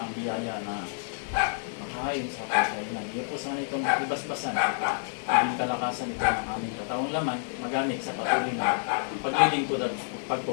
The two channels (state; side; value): silent; right; digital silence